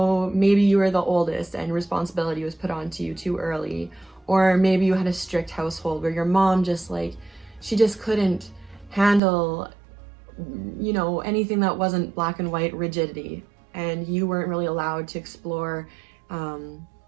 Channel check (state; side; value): drops out; left; at 9.2 s